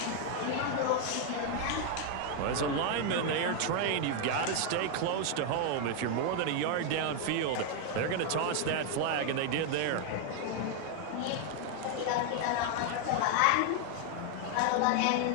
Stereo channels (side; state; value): both; different; correlation 0.00